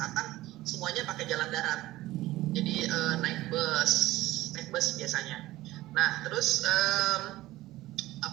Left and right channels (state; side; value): quieter; left; 16.9 dB